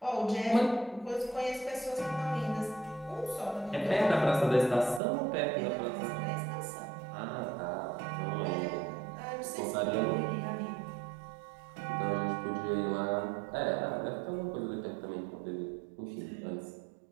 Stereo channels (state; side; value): drops out; left; at 5.0 s